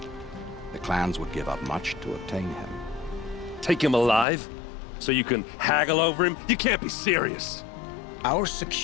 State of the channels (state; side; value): drops out; right; at 4.2 s